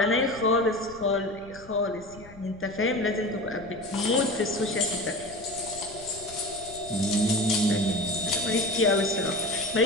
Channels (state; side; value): noise; left; rumble, 20 dB below the sound